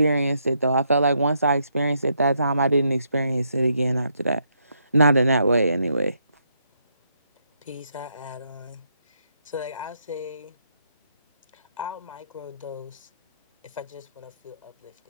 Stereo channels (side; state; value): both; inverted; correlation -0.76